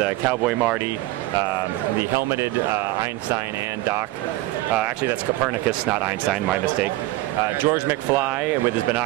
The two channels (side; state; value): left; quieter; 17.9 dB